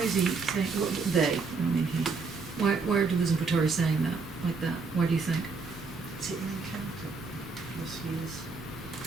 is he saying, they, I mean he, why are Deleuze and Guattari saying that, like that? Why do you think? Is it an encounter? Philosophy is.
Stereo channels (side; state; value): left; quieter; 4.5 dB